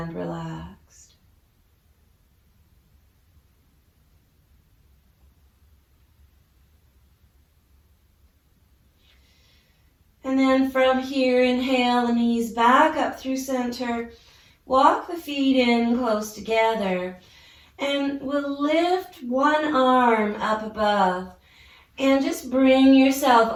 relaxed. And then from here, inhale the knees back up through center. Walk the feet in close together. And we'll lift one arm up above. And just bring yourself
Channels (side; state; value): both; identical; correlation 1.00